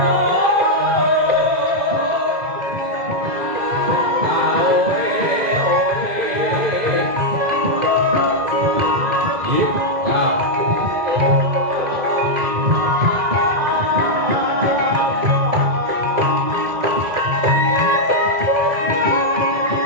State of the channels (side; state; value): left; late; 1.9 ms